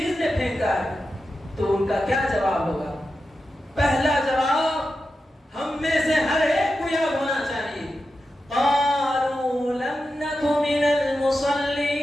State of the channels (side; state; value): both; normal; correlation 0.91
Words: نے پھینکا ہے؟ تو ان کا کیا جواب ہوگا؟ پہلا جواب ہم میں سے ہر ایک کو یاد ہونا چاہیے، قالوا لم نک من المصلین۔